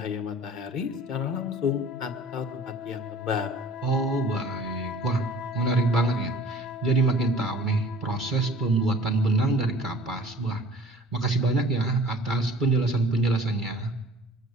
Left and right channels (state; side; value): normal; both; correlation 0.47